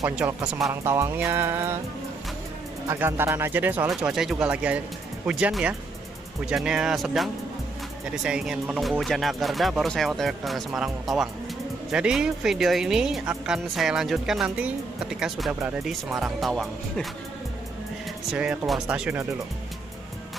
ke Semarang Tawangnya agak antaran aja deh, soalnya cuacanya juga lagi hujan ya, hujannya sedang. Jadi saya ingin menunggu hujan agak reda baru saya OTW ke Semarang Tawang. Jadi video ini akan saya lanjutkan nanti ketika sudah berada di Semarang Tawang. Saya keluar stasiunnya dulu.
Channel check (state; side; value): quieter; left; 3.5 dB